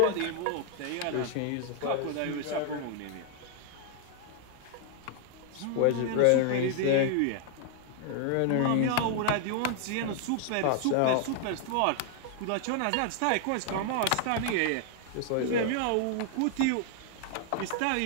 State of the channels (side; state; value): both; different; correlation 0.00